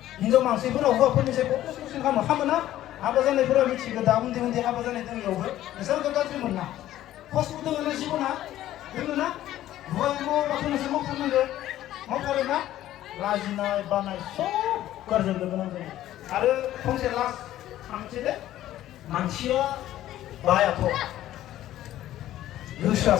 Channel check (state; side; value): quieter; right; 13.5 dB